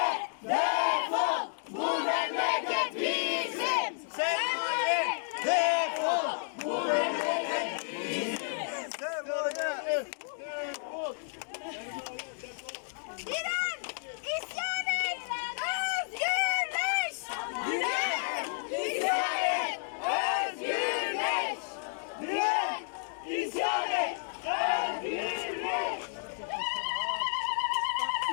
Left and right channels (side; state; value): right; silent; digital silence